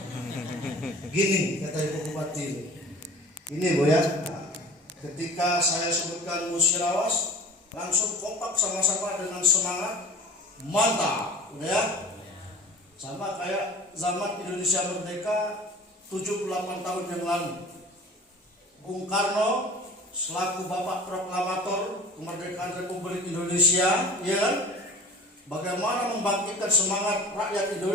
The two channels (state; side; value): normal; both; correlation 0.41